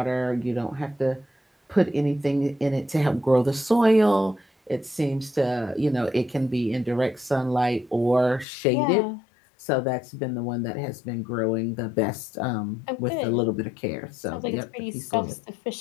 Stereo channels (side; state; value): right; drops out; at 8.5 s